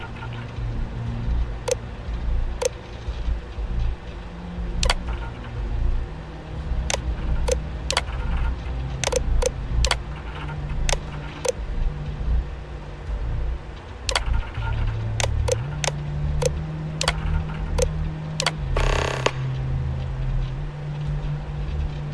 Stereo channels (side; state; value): both; identical; correlation 1.00